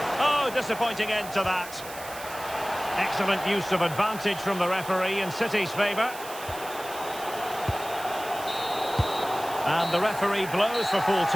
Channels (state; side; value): noise; right; hiss, 14 dB below the sound